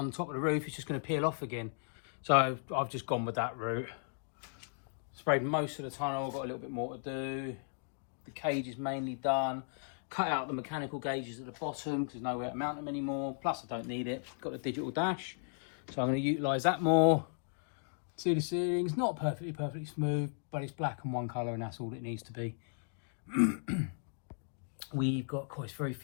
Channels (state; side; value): silent; right; digital silence